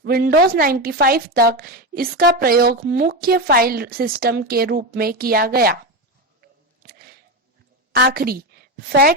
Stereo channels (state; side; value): normal; both; correlation 0.16